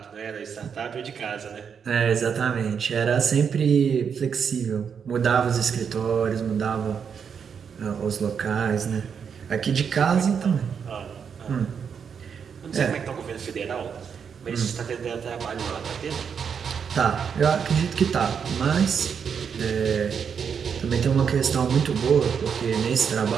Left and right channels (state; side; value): quieter; left; 6.9 dB